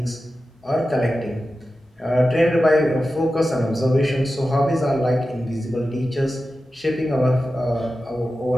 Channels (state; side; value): normal; both; correlation 0.93